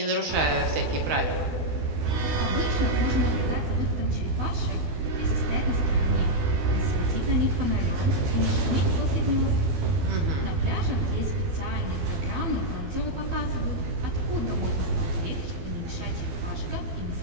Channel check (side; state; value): left; late; 12 ms